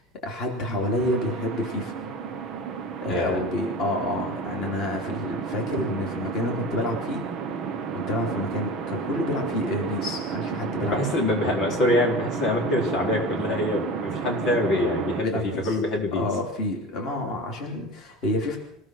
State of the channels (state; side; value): normal; both; correlation 0.33